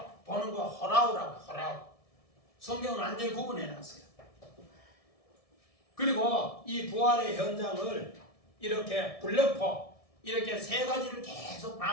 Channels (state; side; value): late; right; 1.7 ms